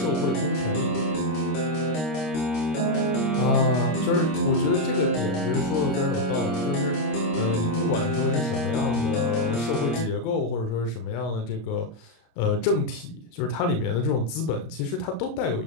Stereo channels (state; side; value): late; right; 26 ms